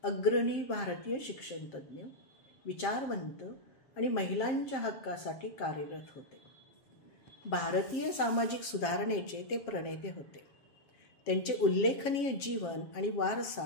अग्रणी भारतीय शिक्षणतज्ज्ञ, विचारवंत आणि महिलांच्या हक्कासाठी कार्यरत होते. भारतीय सामाजिक सुधारणेचे ते प्रणेते होते. त्यांचे उल्लेखनीय जीवन आणि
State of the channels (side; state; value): right; late; 7.5 ms